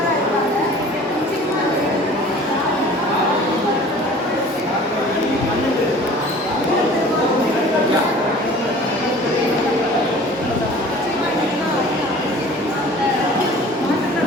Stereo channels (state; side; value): normal; both; correlation 0.46